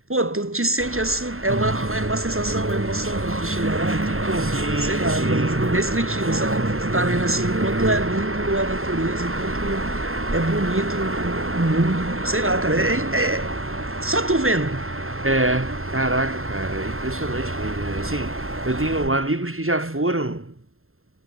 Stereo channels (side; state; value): left; late; 0.61 ms